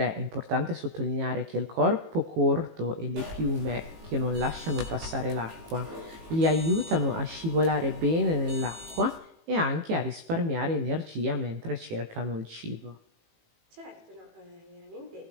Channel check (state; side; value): late; left; 18 ms